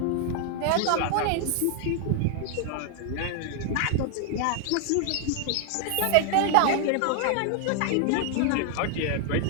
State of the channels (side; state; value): both; different; correlation 0.00